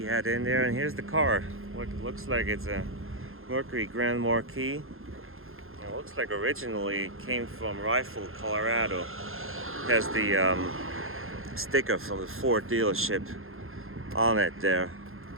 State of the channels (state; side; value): late; left; 0.61 ms